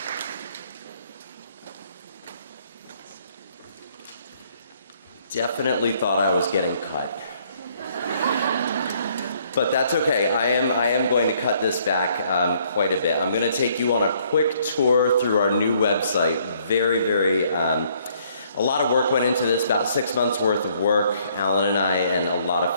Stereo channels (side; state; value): both; inverted; correlation -0.65